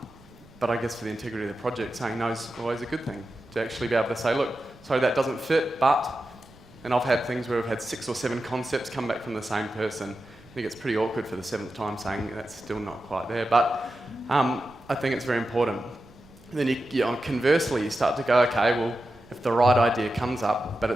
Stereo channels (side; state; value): right; noise; rumble, 26 dB below the sound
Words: I guess for the integrity of the project, saying no is always a good thing. To actually be able to say, look, sorry, that doesn't fit, but... And I've had things where we've had 6 or 7 concepts come back from the same person. I think it's pretty awkward for the 7th time saying that's still not quite there. But I think it's very important. And then conversely, you start to go, okay, well, if the right idea comes up, but